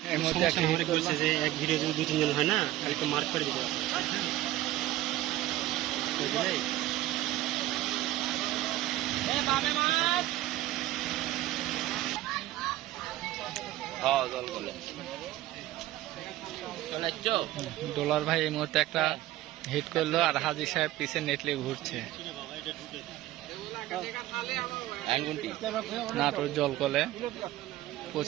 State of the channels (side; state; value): left; quieter; 15.4 dB